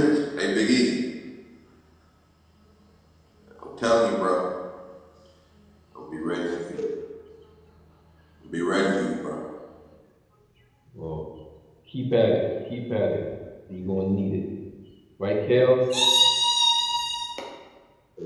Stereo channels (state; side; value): identical; both; correlation 1.00